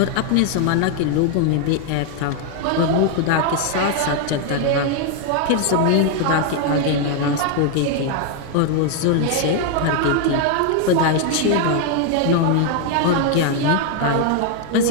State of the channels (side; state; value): both; different; correlation 0.01